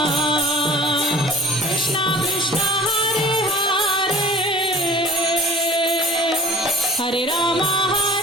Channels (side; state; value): both; normal; correlation 0.44